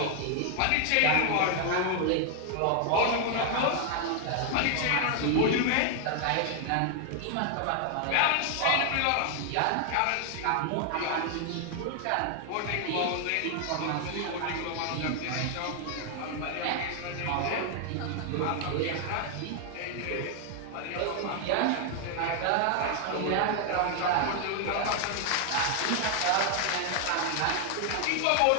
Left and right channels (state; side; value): different; both; correlation 0.00